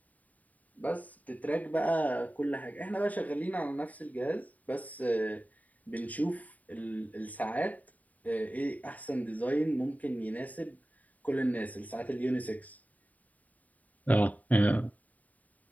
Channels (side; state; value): right; late; 0.073 ms